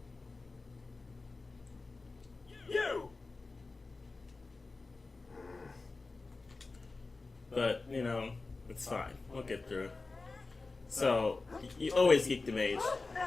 You! But, you know, it's fine. We'll get through it. So, you always geek the mage.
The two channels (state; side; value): quieter; right; 3.7 dB